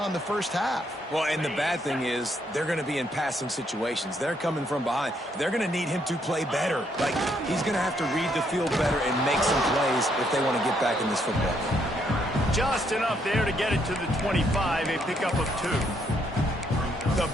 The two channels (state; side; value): normal; both; correlation 0.73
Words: in the 1st half. Well, and the bad thing is they're going to be in passing situations. They're coming from behind. They're going to need him to play better. Like, he's going to have to read the field better and make some plays if they want to get back in this football game. Just enough there to get it to the 25, a pickup of 2. The